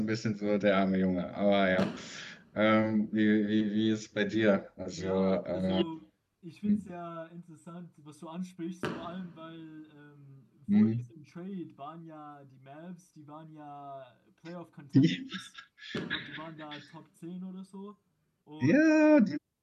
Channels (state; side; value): identical; both; correlation 1.00